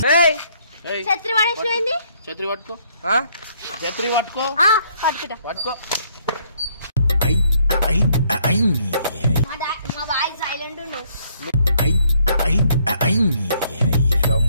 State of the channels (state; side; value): inverted; both; correlation -0.67